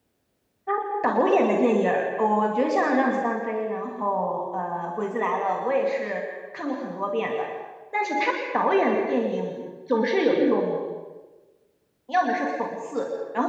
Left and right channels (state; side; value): identical; both; correlation 1.00